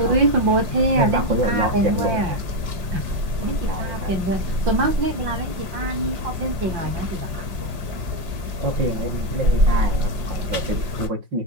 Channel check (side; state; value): left; late; 5.0 ms